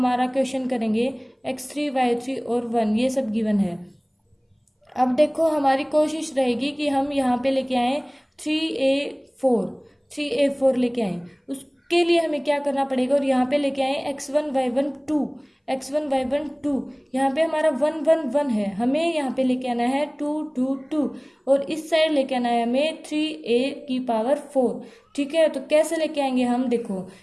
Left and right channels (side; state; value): both; identical; correlation 1.00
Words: क्वेश्चन करेंगे। x3 y3 और 1 ये सब गिवन है। अब देखो हमारी कोशिश रहेगी कि हम यहाँ पे लेके आए 3a4 लेके आए। उसके लिए हमें क्या करना पड़ेगा, और यहाँ पे लेके आए x1 y1 2, यहाँ पे हमारा 1 1 1 है, हमें यहाँ पे लेके आना है 2 2 2, और इस साइड लेके आना है हमें 3a4। ठीक है, तो कैसे लेके आएंगे हम, देखो